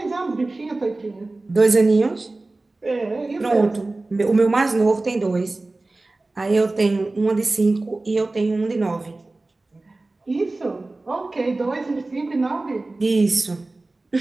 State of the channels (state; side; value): quieter; left; 3.1 dB